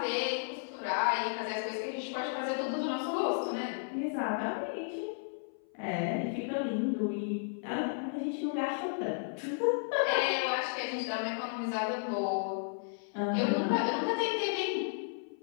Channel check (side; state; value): right; silent; 55 dB below the other